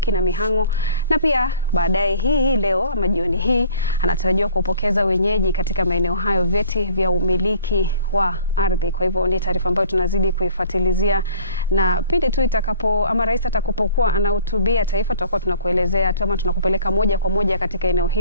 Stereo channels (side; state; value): both; inverted; correlation -0.51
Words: na Mihango, na pia baadaye hii leo ama jioni hii anatarajiwa kupokeza wenyeji katika maeneo hayo vyeti vya umiliki wa ardhi. Kwa hivyo ni taarifa ambayo tunazidi kuifuatilizia, na pindi tu rais atakapokuwa anahutubia taifa, tutakuwa tunakuelezea tu ama tunakupeleka moja kwa moja katika eneo